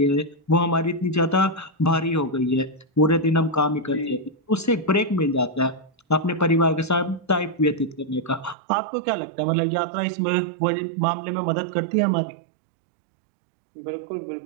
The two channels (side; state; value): left; drops out; at 8.6 s